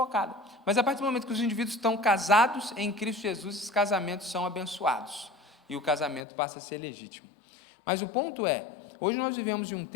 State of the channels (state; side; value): drops out; right; at 6.2 s